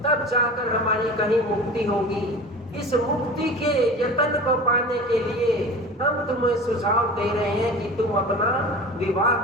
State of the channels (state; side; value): normal; both; correlation 0.36